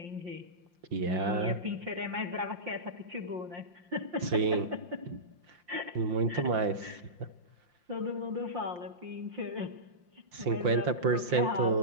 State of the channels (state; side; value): late; left; 5.7 ms